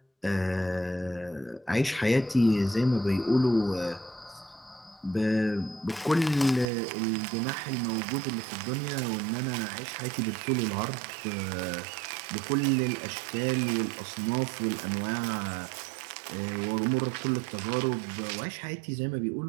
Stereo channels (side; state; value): left; drops out; at 6.7 s